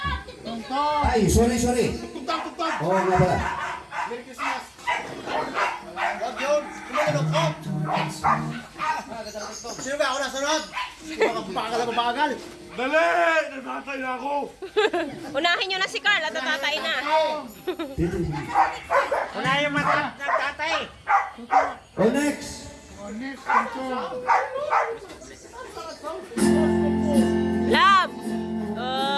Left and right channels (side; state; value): both; identical; correlation 1.00